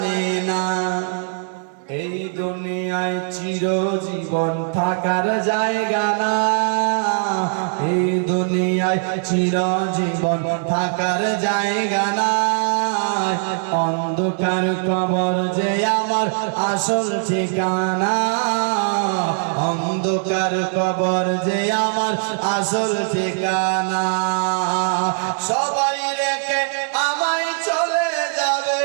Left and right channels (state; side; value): silent; left; digital silence